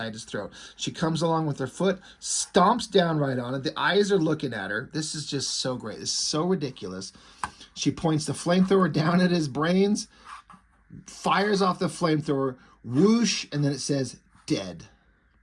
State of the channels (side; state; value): both; identical; correlation 1.00